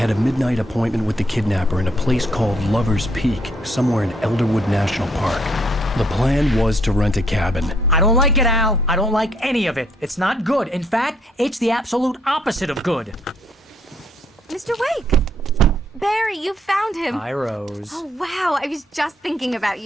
a midnight appointment with the kidnapper in a place called Lover's Peak, somewhere in Elderwood National Park. The plan was to rent a cabin. I don't like it, Al. I don't like any of it. It's not good. In fact, it's the absolute opposite of good. Mr. Wake! Barry, you found him! Hi, Rose. Oh, wow. I was just thinking about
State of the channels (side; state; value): both; normal; correlation 0.69